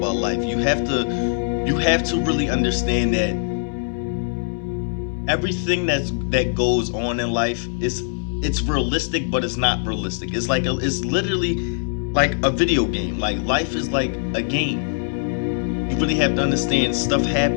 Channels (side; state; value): right; silent; 60 dB below the other